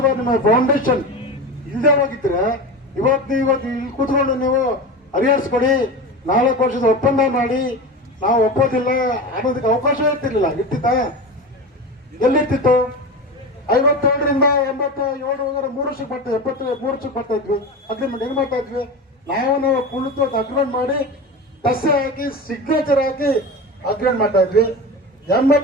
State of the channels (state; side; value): normal; both; correlation 0.26